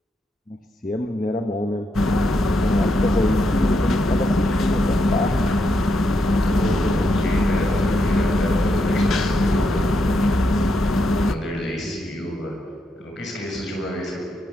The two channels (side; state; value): both; normal; correlation 0.81